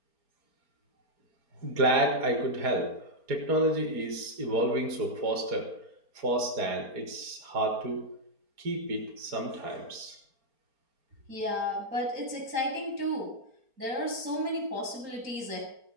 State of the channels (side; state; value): left; late; 4.4 ms